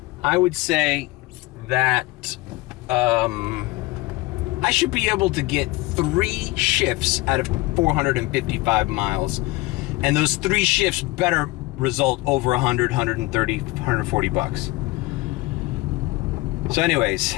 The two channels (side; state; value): right; quieter; 21.2 dB